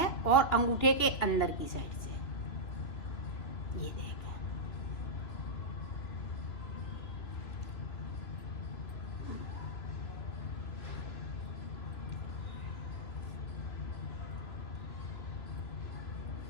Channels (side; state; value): right; late; 3.0 ms